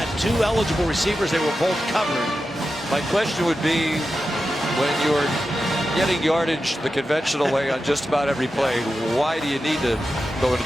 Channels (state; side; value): normal; both; correlation 0.91